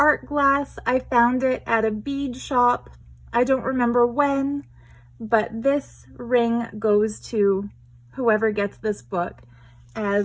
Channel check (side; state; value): both; identical; correlation 1.00